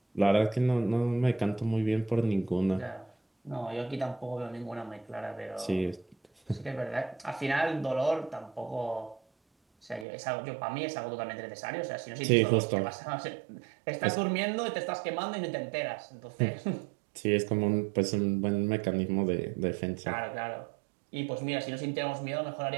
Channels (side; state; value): left; drops out; at 10.1 s